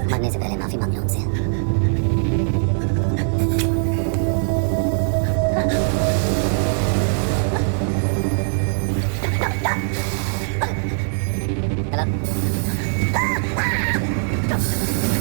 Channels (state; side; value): silent; left; digital silence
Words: मरने से पहले माफी मांग लो उनसे।